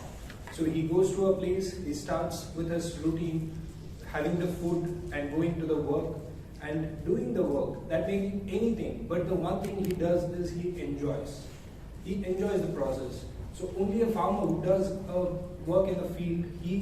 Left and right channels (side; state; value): both; identical; correlation 1.00